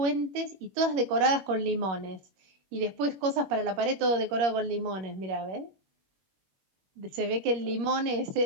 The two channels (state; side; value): late; left; 21 ms